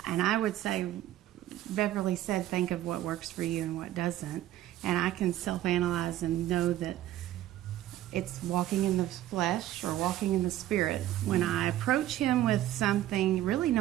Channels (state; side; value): quieter; left; 13.5 dB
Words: I would say Beverly said, think of what works for you and what doesn't, and I can self-analyze and know that it's walking in the flesh or walking in the spirit. When I approach him with something, really